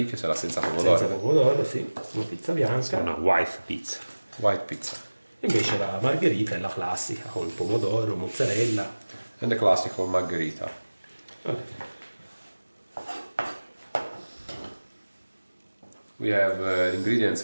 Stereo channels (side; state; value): both; inverted; correlation -1.00